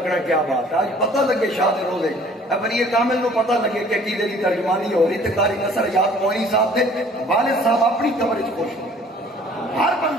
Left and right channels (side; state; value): both; normal; correlation 0.54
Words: کیا بات ہے. آج پتہ لگے شاہ دے روزے ولی کامل نو پتہ لگے کہ عقیدے دی ترجمانی ہو رہی, تے قاری نصر یاد موئینی صاحب دے والد صاحب اپنی قبر وچ خوش ہو. ہر